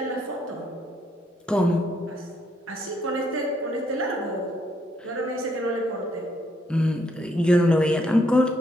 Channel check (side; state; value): both; normal; correlation 0.72